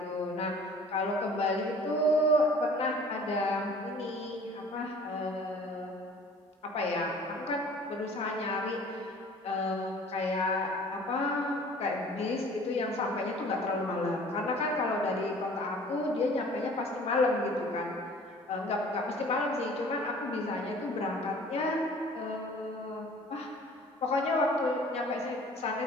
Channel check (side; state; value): both; normal; correlation 0.49